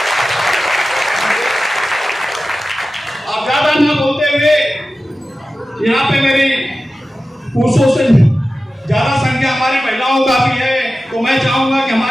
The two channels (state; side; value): normal; both; correlation 0.94